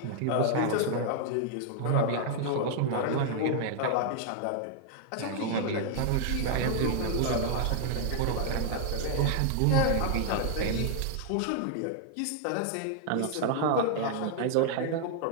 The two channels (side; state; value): both; different; correlation 0.00